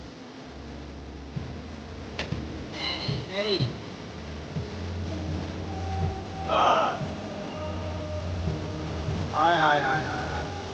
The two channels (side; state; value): both; identical; correlation 1.00